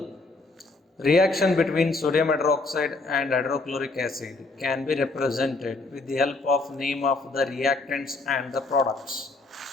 reaction between sodium hydroxide and hydrochloric acid can be represented with the help of name of the reactants and the products.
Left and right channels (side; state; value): right; quieter; 3.4 dB